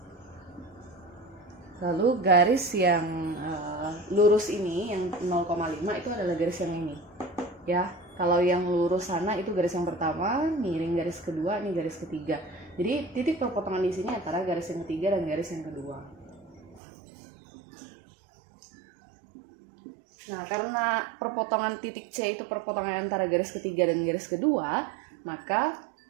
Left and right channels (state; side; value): drops out; left; at 16.8 s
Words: Lalu garis yang lurus ini yang 0,5 itu adalah garis yang ini. Ya, kalau yang lurus sana itu garis yang pertama, miring garis kedua, ini garis ketiga. Jadi titik perpotongan di sini antara garis yang ketiga dan garis yang kedua. Nah, karena perpotongan titik C itu perpotongan antara garis ketiga dan garis kedua, maka